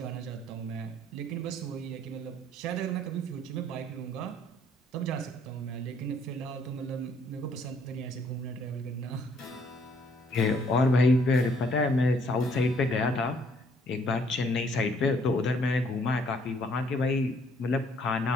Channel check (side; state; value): both; normal; correlation 0.65